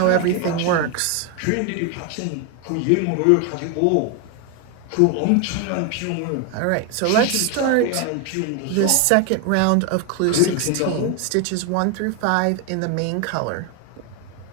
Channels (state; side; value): different; both; correlation 0.01